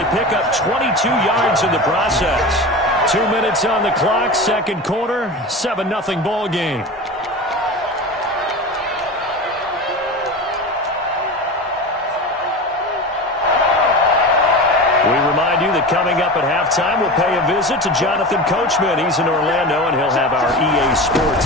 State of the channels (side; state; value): both; normal; correlation 0.28